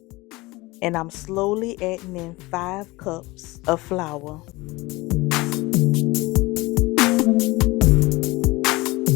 and I'm slowly adding in 5 cups of flour.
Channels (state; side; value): quieter; right; 21.9 dB